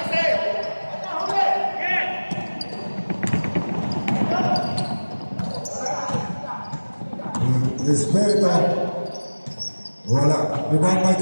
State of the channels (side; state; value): both; inverted; correlation -1.00